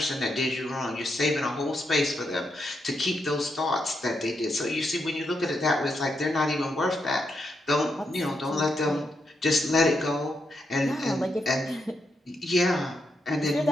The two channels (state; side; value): normal; both; correlation 0.81